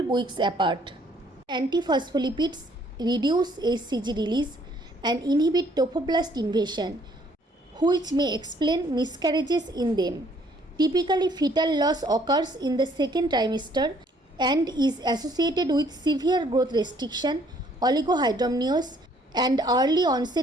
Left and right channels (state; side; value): normal; both; correlation 0.63